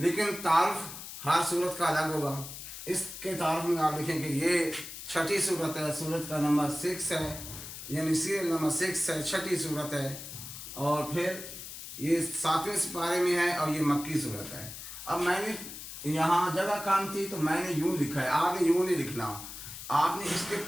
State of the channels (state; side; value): noise; left; hiss, 11 dB below the sound